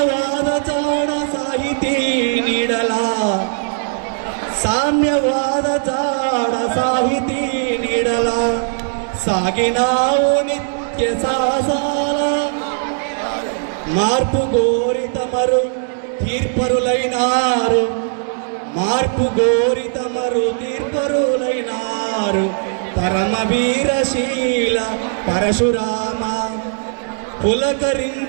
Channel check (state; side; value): silent; left; digital silence